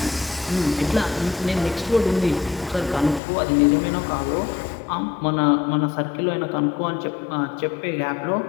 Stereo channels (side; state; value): right; drops out; at 3.2 s